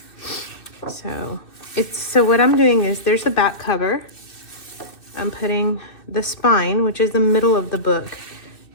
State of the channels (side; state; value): right; late; 2.6 ms